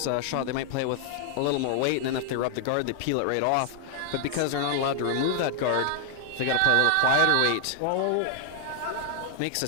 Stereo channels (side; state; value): both; different; correlation 0.00